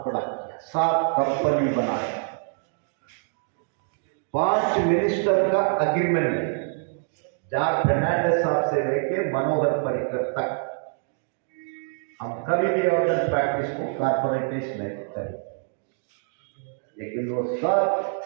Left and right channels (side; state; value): left; silent; digital silence